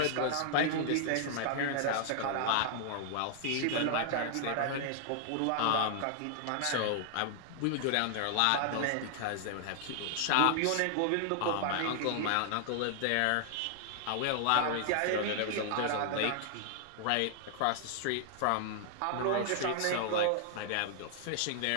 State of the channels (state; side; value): different; both; correlation 0.00